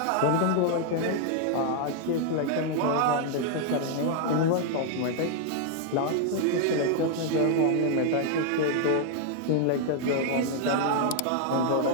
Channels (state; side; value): different; both; correlation 0.00